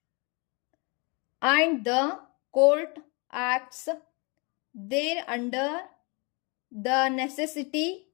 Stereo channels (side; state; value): right; quieter; 30.8 dB